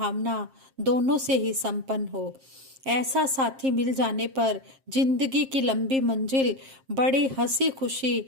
दोनों से ही संपन्न हो। ऐसा साथी मिल जाने पर जिंदगी की लंबी मंजिल बड़ी हंसी खुशी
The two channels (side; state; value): left; late; 7.5 ms